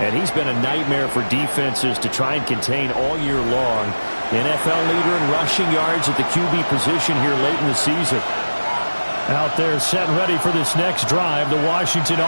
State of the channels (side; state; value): both; inverted; correlation -1.00